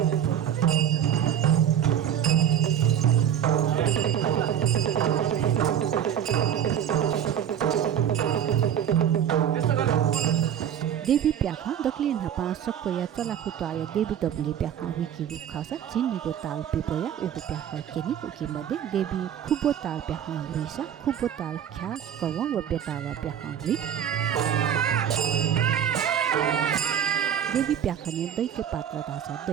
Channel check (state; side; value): quieter; left; 9.4 dB